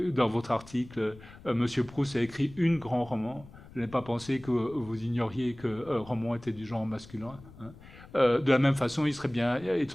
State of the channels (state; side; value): noise; left; rumble, 20 dB below the sound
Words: dans votre article, Monsieur Proust a écrit une grand roman, je n'ai pas pensé que vous ignoriez que roman était du genre masculin. De la même façon, il serait bien